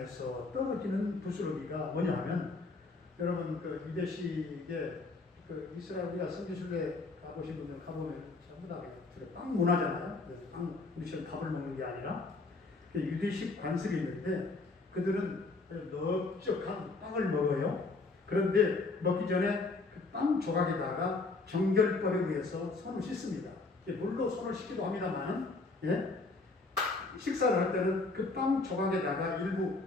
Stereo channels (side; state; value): right; quieter; 3.6 dB